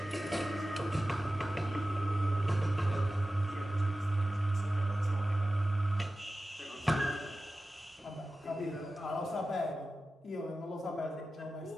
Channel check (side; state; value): both; normal; correlation 0.94